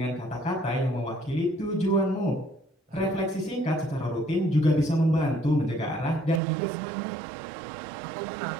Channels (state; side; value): drops out; left; at 6.4 s